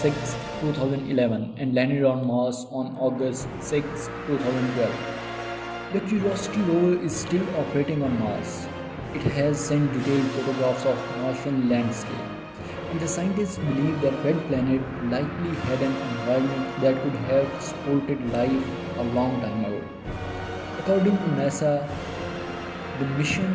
2011 and landed on Mars on August 6, 2012. The Curiosity rover is still operating on Mars. It has sent detailed photographs of Martian landscape, and the scientists believe that Red Planet likely had an environment that could have supported life a long time ago. According to NASA, the mission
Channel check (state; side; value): identical; both; correlation 1.00